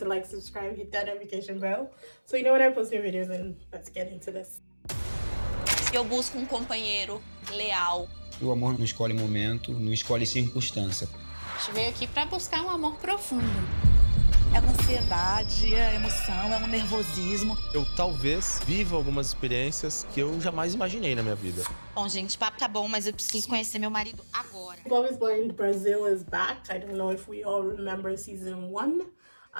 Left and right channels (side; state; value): both; inverted; correlation -1.00